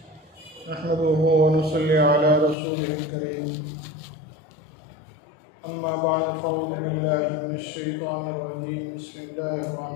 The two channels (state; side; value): drops out; right; at 2.6 s